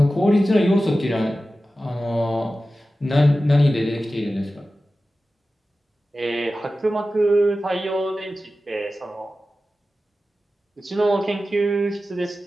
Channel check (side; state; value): both; normal; correlation 0.94